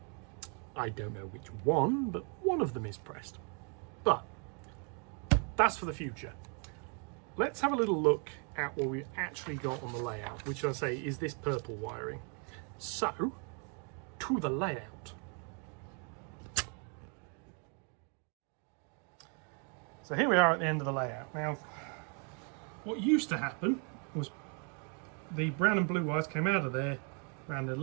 I don't know which one, but one of them is pressed. But that's for the future. Let's have a little look at what we actually got on the layout, which I say is this purple wiring. So, to the layout. So here we are at the end of the layout. Now, what used to happen was the brown and blue wires came out of there, ran a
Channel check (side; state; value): left; quieter; 38.3 dB